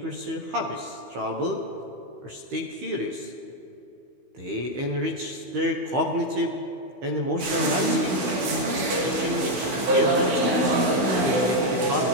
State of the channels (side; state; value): left; late; 16 ms